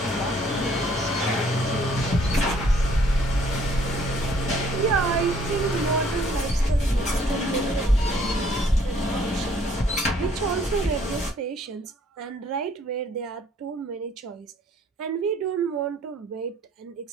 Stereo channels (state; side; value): normal; both; correlation 0.61